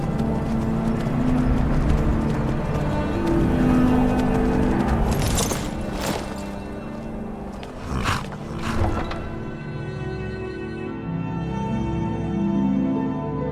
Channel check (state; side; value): identical; both; correlation 1.00